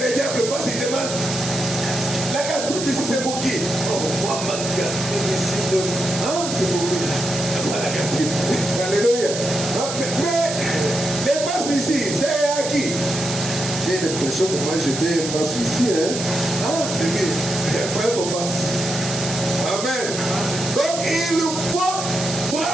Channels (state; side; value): noise; right; hiss, 6 dB below the sound